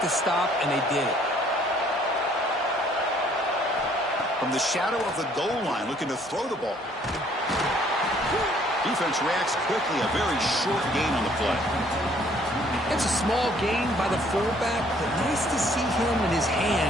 the stop, and they did it. From the shadow of the goal line, looking to throw the ball. Defense reacts quickly, a very short gain on the play. It's a small gain by the fullback, but nice to see him and his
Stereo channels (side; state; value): both; normal; correlation 0.61